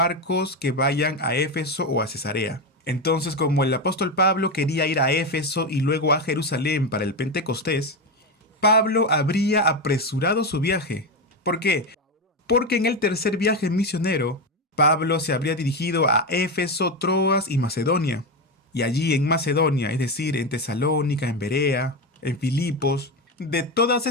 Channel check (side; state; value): both; normal; correlation 0.14